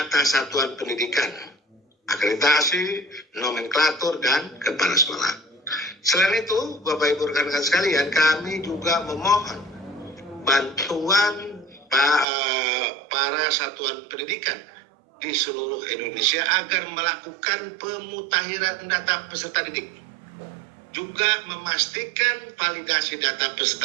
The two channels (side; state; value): left; drops out; at 12.2 s